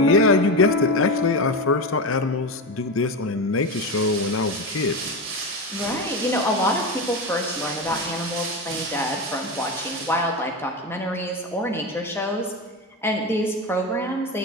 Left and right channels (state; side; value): normal; both; correlation 0.19